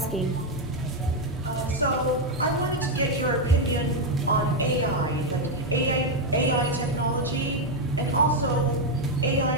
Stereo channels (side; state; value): both; normal; correlation 0.04